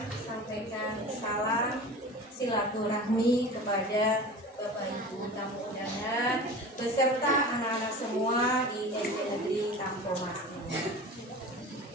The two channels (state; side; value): normal; both; correlation 0.35